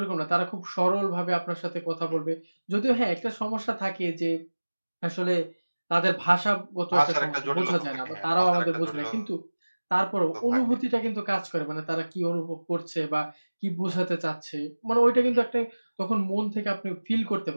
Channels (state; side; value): inverted; both; correlation -1.00